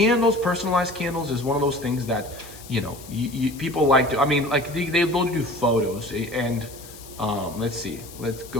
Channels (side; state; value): left; noise; hiss, 18 dB below the sound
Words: personalized candles is one of those things that, people like to, like they'll do photos and let's see, let's